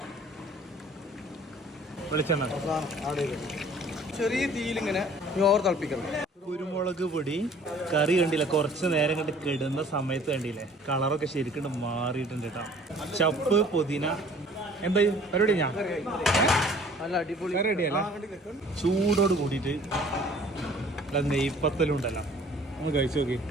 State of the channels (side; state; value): both; normal; correlation 0.52